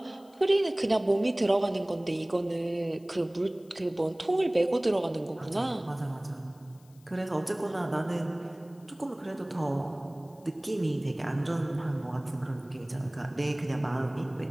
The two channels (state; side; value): noise; left; hiss, 30 dB below the sound